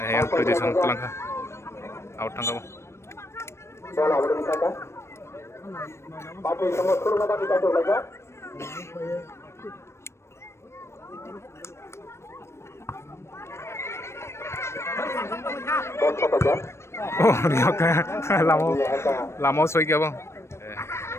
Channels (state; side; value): late; right; 0.13 ms